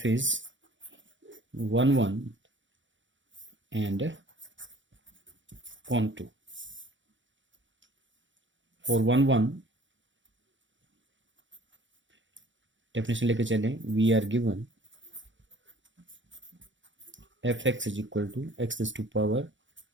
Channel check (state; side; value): late; left; 0.55 ms